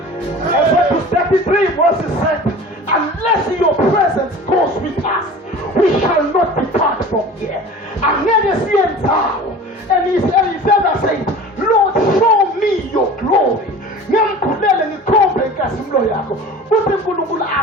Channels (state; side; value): normal; both; correlation 0.39